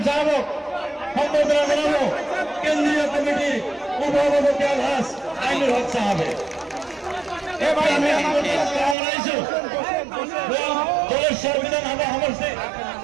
সাহেবক সম্বর্ধনা জানাবো কেন্দ্রীয় কমিটির উপসভাপতি আলহাজ আইনুল হক সাহেব।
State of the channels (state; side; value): drops out; left; at 9.0 s